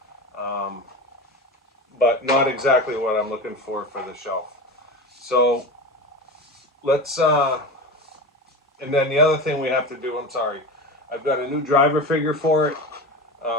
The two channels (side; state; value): both; normal; correlation 0.27